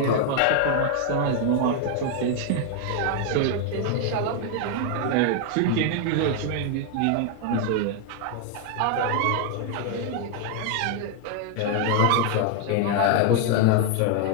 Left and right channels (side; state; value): both; different; correlation 0.00